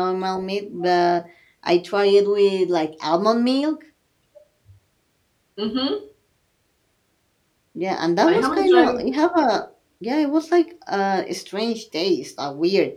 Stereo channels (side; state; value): both; identical; correlation 1.00